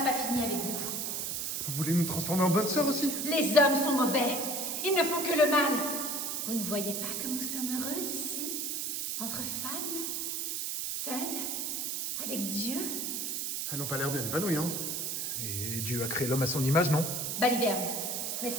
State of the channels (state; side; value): noise; right; hiss, 2 dB below the sound